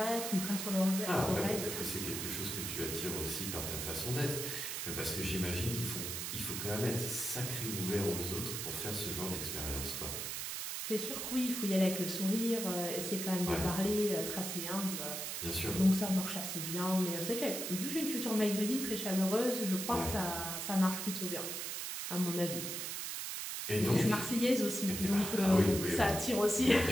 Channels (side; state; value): right; noise; hiss, 4 dB below the sound